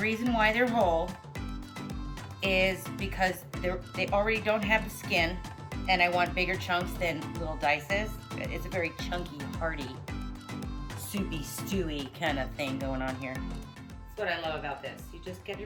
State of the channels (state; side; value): identical; both; correlation 1.00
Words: why they're whole is because they already don't have the skin, and I want bigger chunks than little dices. It's a very chunky, hearty, soupy, stewy kind of thing going on here. That's what I love about this. You just get